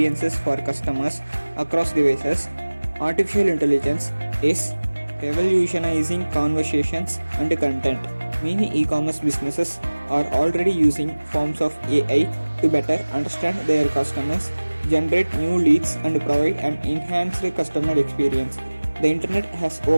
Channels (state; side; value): inverted; both; correlation -1.00